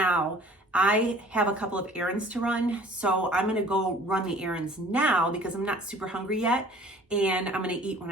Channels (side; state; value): both; normal; correlation 0.50